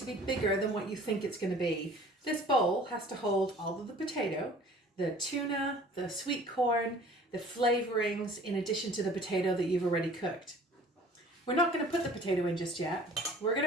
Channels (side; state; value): both; normal; correlation 0.49